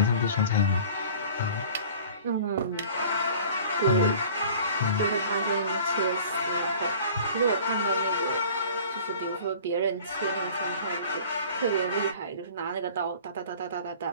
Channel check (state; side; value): inverted; both; correlation -0.45